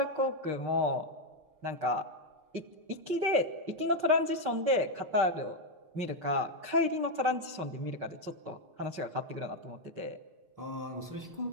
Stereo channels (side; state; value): left; late; 6.5 ms